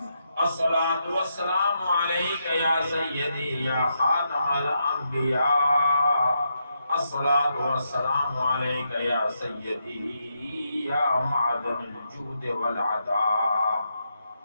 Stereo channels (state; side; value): inverted; both; correlation -0.82